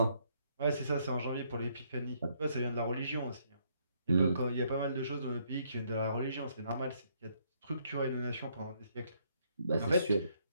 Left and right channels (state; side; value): inverted; both; correlation -0.71